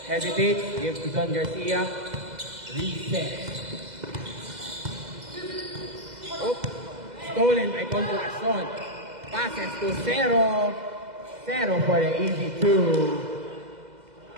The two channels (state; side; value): late; left; 2.0 ms